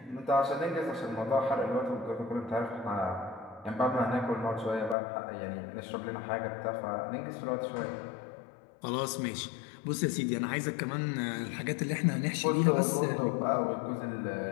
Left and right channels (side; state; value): right; drops out; at 5.0 s